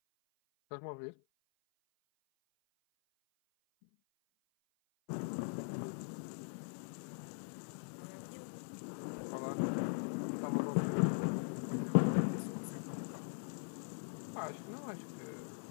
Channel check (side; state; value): right; silent; 50 dB below the other